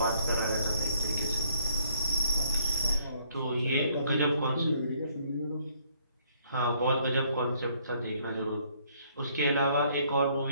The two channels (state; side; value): inverted; both; correlation -0.65